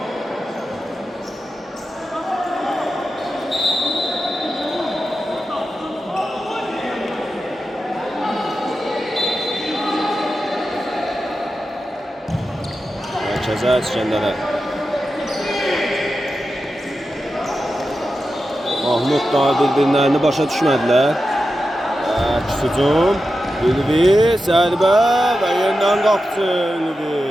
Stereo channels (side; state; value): both; normal; correlation 0.91